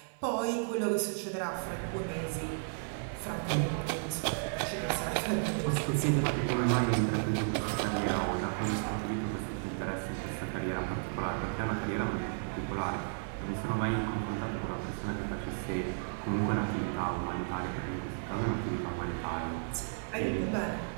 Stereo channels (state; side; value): silent; left; 55 dB below the other